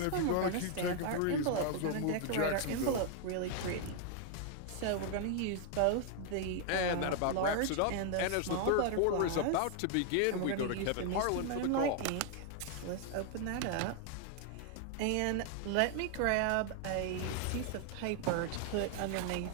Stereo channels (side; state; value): both; different; correlation 0.00